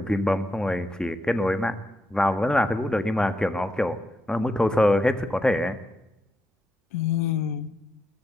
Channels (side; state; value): both; normal; correlation 0.83